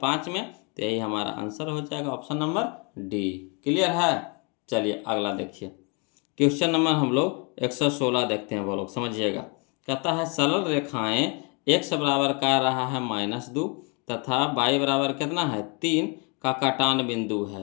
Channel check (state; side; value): quieter; right; 33.2 dB